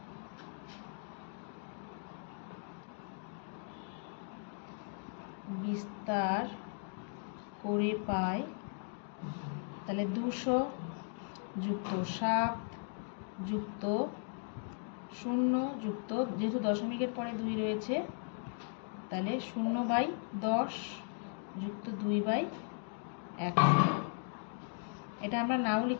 বিস্তার করে পাই, তাহলে 200 যুক্ত 7 যুক্ত 0 যুক্ত, যেহেতু দশমিকের পরে 2 রয়েছে তাহলে 0/10 যুক্ত 2/100। এটা আমরা নাও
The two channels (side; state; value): right; silent; 53 dB below the other